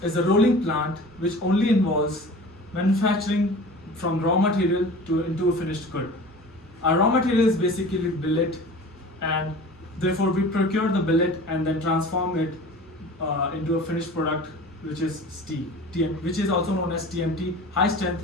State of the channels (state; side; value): normal; both; correlation 0.40